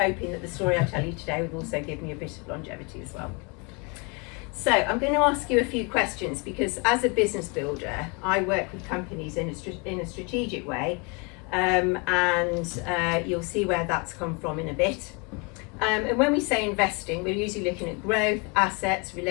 that the story I tell you today would also give me a bit of longevity as well. So I'm going to ask you a few questions because as a business builder, I work with companies in a strategic way. And you'll see where that's come from in a bit. And when we say investing, we're usually looking at growth, assets,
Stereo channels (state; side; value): quieter; right; 31.6 dB